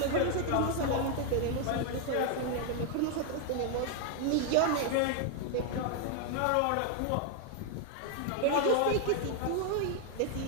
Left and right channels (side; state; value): both; different; correlation 0.00